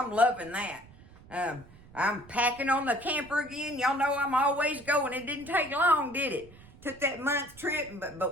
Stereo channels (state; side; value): noise; right; rumble, 22 dB below the sound